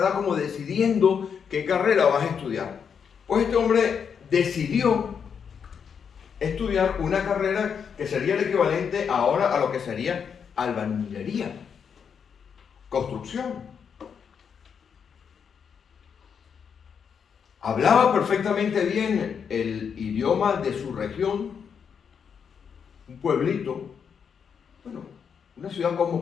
como decidiendo qué carrera vas a estudiar. Pues este hombre decidió estudiar una carrera que sería el equivalente ahora a lo que sería albañilería, construcción. Hablaba perfectamente bien el idioma de su región, un pueblito, bueno, una ciudad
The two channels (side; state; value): right; quieter; 6.9 dB